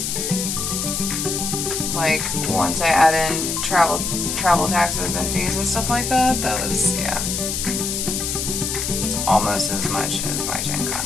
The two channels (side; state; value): left; noise; hiss, 2 dB below the sound